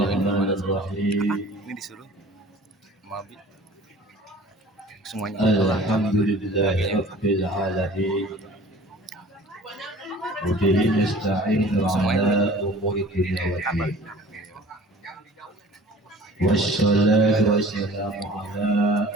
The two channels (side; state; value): both; normal; correlation 0.46